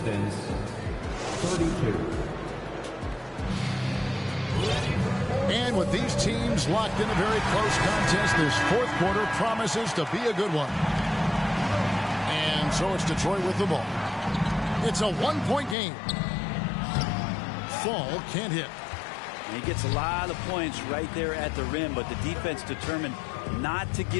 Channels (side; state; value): right; drops out; at 15.8 s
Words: Pistons 32. And with these teams locked in a very close contest, this fourth quarter promises to be a good one. And so it's Detroit with the ball. It's a one-point game. Fall can't hit. He gets a lot of points right there at the rim, but the defense determined not to